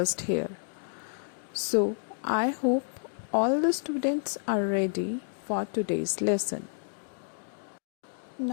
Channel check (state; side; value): silent; right; digital silence